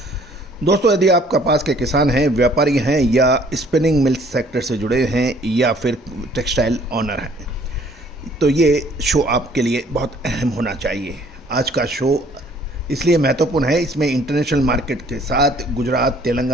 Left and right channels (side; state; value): both; normal; correlation 0.58